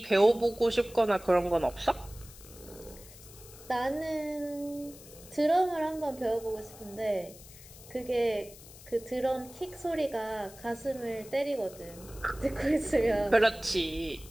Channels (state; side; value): noise; left; hiss, 19 dB below the sound